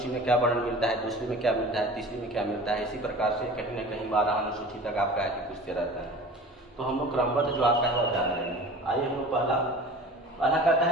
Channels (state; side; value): normal; both; correlation 0.40